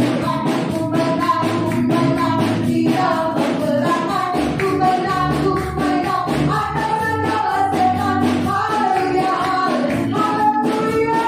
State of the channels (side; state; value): both; identical; correlation 1.00